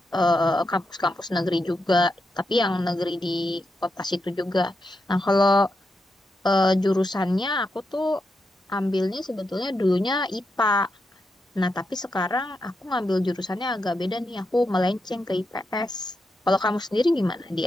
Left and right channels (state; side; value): normal; both; correlation 0.85